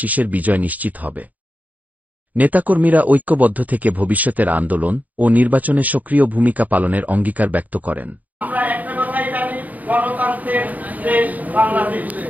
বিজয় নিশ্চিত হবে। নেতাকর্মীরা ঐক্যবদ্ধ থেকে ভবিষ্যতের আন্দোলন ও নির্বাচনে সক্রিয় ভূমিকা পালনের অঙ্গীকার ব্যক্ত করেন। আমরা একটা কথাই জানি, গণতন্ত্রের দেশ বাংলাদেশ।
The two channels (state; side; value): late; left; 0.077 ms